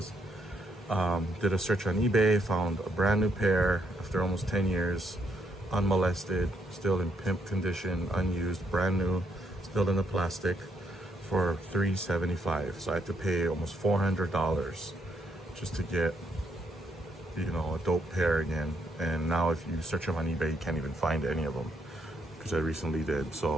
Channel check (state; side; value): normal; both; correlation 0.75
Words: Did a search on eBay, found a brand new pair after almost 10 years, unmolested, still in pimp condition, unused, brand new, still in the plastic, for $375. So I had to pay almost $400 just to get, you know, a dope pair again. And now if you search them on eBay, you can't even find any of them, because I recently did.